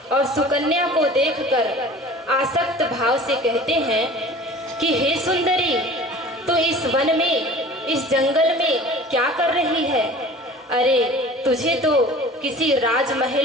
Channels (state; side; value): normal; both; correlation 0.43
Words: और सुकन्या को देखकर आसक्त भाव से कहते हैं कि हे सुंदरी, तो इस वन में, इस जंगल में क्या कर रही है? अरे, तुझे तो किसी